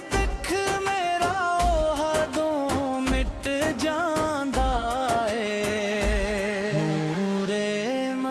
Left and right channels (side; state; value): both; identical; correlation 1.00